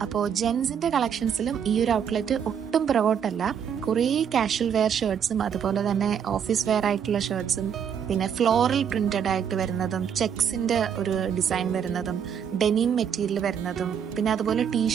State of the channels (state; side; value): quieter; left; 8.0 dB